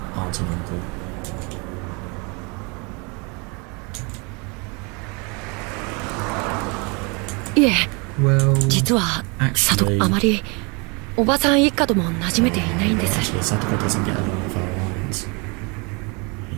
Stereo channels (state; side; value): quieter; left; 30.5 dB